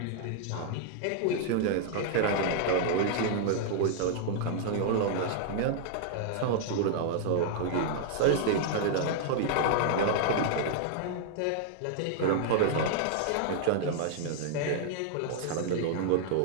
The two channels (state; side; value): different; both; correlation -0.01